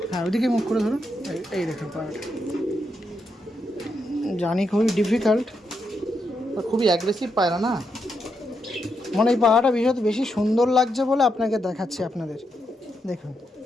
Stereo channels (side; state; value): both; normal; correlation 0.82